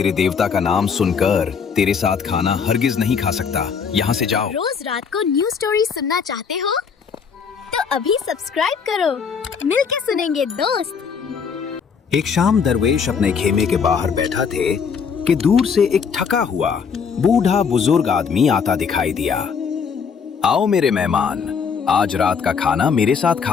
देवता का नाम सुनकर तेरे साथ खाना हरगिज नहीं खा सकता। यहाँ से जाओ। रोज रात को न्यू स्टोरी सुनना चाहते हो तो अभी सब्सक्राइब करो। मिलके सुनेंगे दोस्त। एक शाम दरवेश अपने खेमे के बाहर बैठा थे कि दूर से एक थका हुआ बूढ़ा बुजुर्ग आदमी आता दिखाई दिया। आओ मेरे मेहमान, आज रात का खाना मेरे साथ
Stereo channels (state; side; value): quieter; right; 6.3 dB